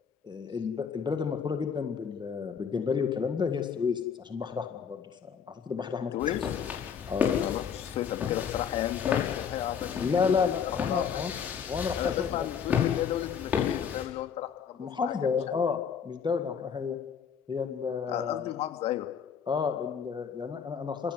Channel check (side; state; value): right; quieter; 7.1 dB